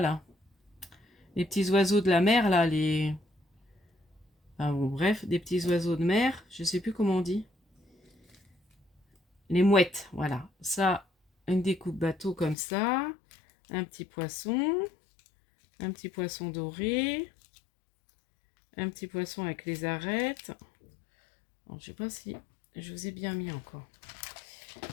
là? Les petits oiseaux de la mer, là. Enfin, bon, bref, des petits oiseaux de mer. Je sais plus comment on dit. Les mouettes, voilà. Ça, une découpe bateau comme ça. Un petit poisson. Un petit poisson doré, un petit poisson avec les arêtes. Bon, je sais pas si je vous ai bien mis encore.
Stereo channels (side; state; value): right; drops out; at 12.6 s